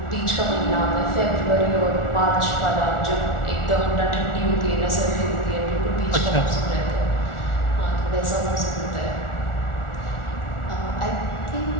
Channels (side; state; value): right; late; 1.4 ms